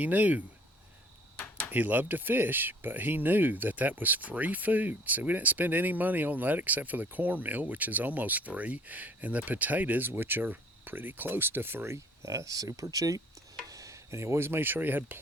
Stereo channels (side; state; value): both; normal; correlation 0.55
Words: He loved to fish, but he knew that was free food. So we didn't spend any money on that except for the cornmeal, which is almost free, and the potatoes, which are pretty close to free, super cheap. And he always made sure he had